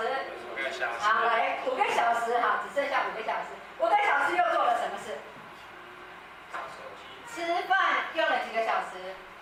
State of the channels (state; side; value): identical; both; correlation 1.00